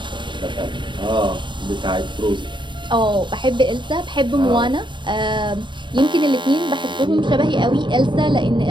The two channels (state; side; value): late; left; 0.23 ms